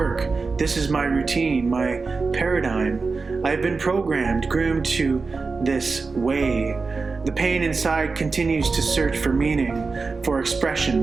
This is my routine, my paradigm. I've been programmed, groomed to this way. The pain inside continues to search for meaning, for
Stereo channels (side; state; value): left; quieter; 4.3 dB